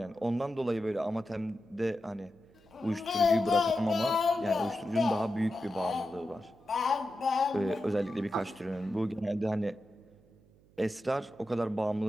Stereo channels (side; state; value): right; noise; hum, 29 dB below the sound